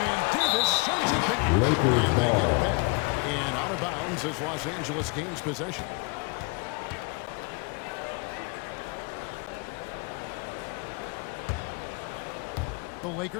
Davis sends it back. And they get it back. And out of bounds as Los Angeles gains possession. The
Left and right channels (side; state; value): right; quieter; 30.3 dB